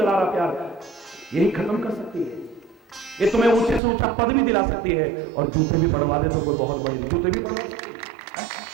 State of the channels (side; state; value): left; drops out; at 3.8 s